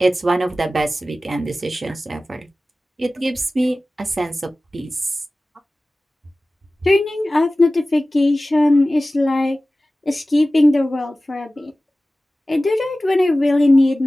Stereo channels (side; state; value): both; normal; correlation 0.96